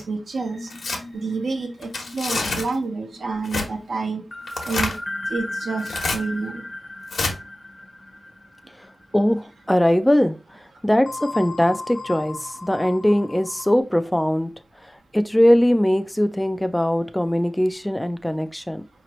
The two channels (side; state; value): both; normal; correlation 0.97